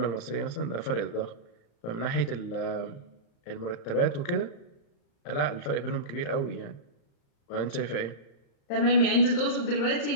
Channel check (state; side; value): late; right; 35 ms